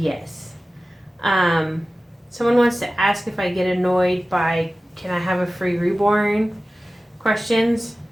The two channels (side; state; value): both; normal; correlation 0.96